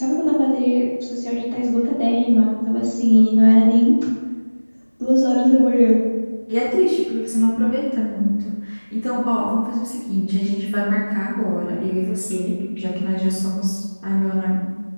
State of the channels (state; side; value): inverted; both; correlation -1.00